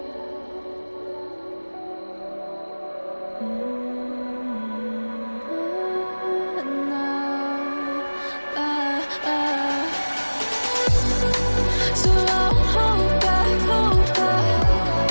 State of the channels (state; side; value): inverted; both; correlation -1.00